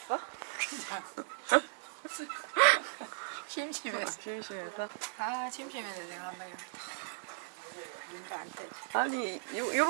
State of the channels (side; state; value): left; silent; digital silence